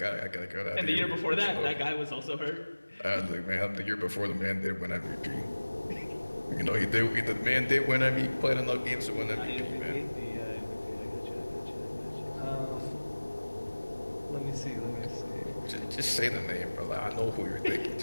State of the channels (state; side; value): inverted; both; correlation -1.00